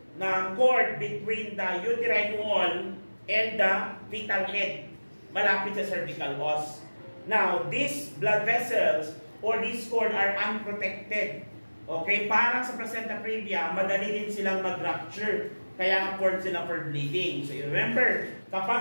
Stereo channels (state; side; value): inverted; both; correlation -1.00